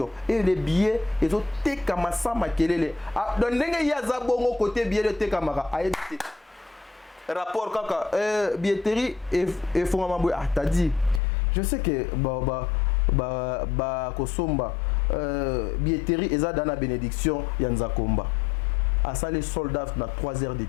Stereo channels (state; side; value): drops out; right; at 11.2 s